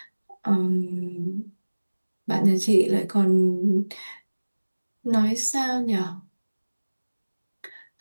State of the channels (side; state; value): both; inverted; correlation -1.00